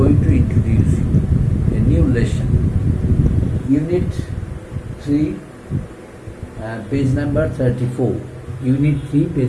to introduce you. A new lesson. Unit 3 page number 34. Unit 3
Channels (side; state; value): both; identical; correlation 1.00